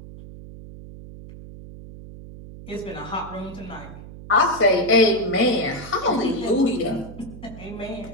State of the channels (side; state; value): right; noise; hum, 15 dB below the sound